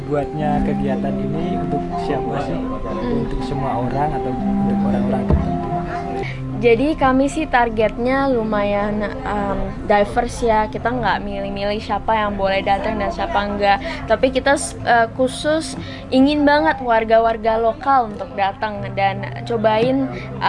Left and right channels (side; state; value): both; identical; correlation 1.00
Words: kegiatan ini untuk siapa sih? Untuk semua orang atau untuk orang-orang tertentu? Jadi kami sih targetnya lumayan diverse ya. Kita nggak milih-milih siapa yang boleh datang dan siapa enggak. Tapi kita khusus ingin banget warga-warga lokal untuk datang dan cobain